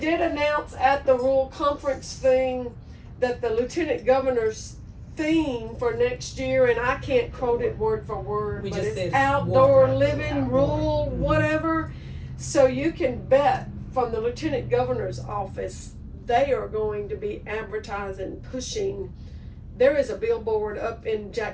announce at the rural conference thing that the lieutenant governor's theme for next year, and I can't quote it word for word, We but just said it's it's outdoor water. living, rural, whatever. So you can bet from the lieutenant governor's office, they are going to be advertising, pushing. There is a billboard up in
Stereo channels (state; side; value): identical; both; correlation 1.00